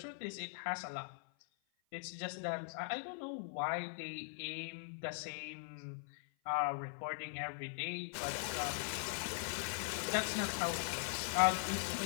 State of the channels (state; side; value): silent; right; 50 dB below the other